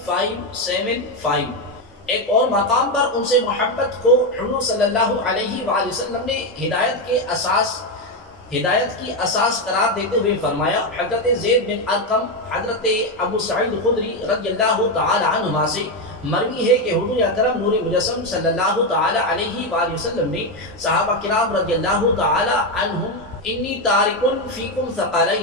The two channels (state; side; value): normal; both; correlation 0.08